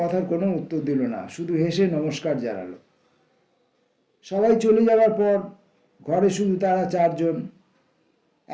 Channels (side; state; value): both; identical; correlation 1.00